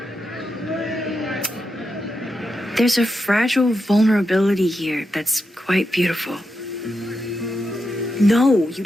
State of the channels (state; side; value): normal; both; correlation 0.86